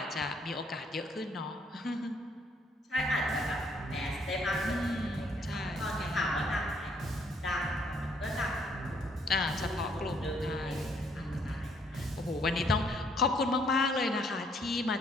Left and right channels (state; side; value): normal; both; correlation 0.67